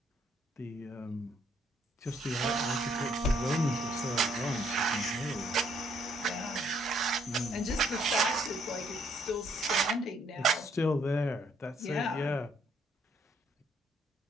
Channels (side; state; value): both; normal; correlation 0.67